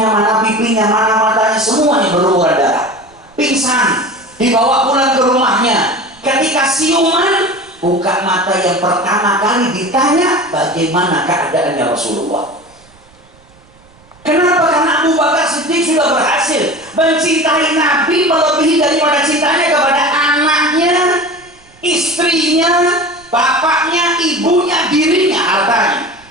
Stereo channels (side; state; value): right; noise; rumble, 29 dB below the sound